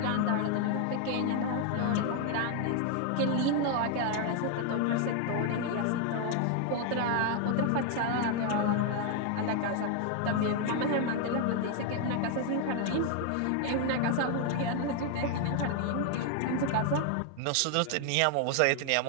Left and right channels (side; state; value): both; different; correlation 0.00